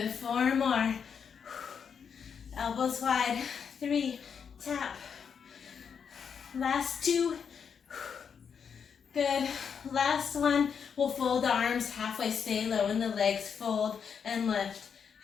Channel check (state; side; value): quieter; right; 6.9 dB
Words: 4 more. Elbows wide. 3. Tap. Last 2. Good. Last 1. We'll fold the arms halfway. Stay low in the legs. Fold and lift.